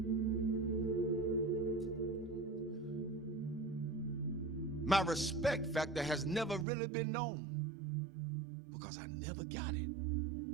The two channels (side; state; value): left; drops out; at 6.7 s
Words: My respect factor has never really been known because I never got it.